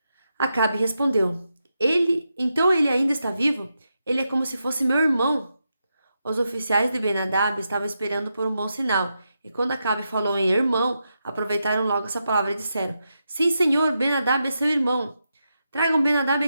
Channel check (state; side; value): inverted; both; correlation -0.86